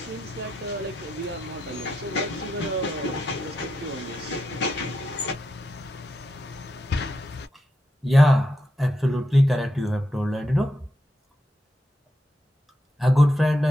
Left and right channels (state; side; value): normal; both; correlation 0.85